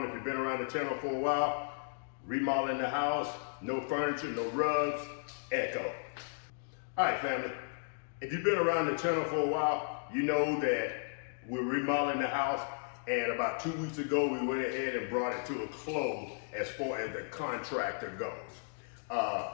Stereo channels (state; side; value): silent; right; digital silence